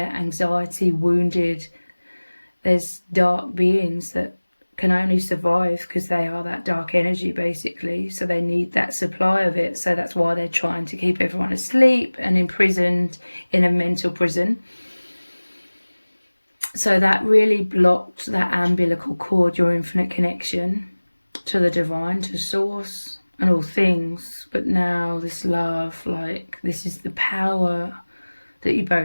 anxiety, wounded. There's dark beings that can only survive because they are that dark energy basically, so they need that supply of it. So that's why they're trying to keep everyone asleep and imprisoned in a mental prison. So that really blocked that umbilical cord, your infinite connection to the divine, to source and all things. But now this love, like, this is the power that you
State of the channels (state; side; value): inverted; both; correlation -1.00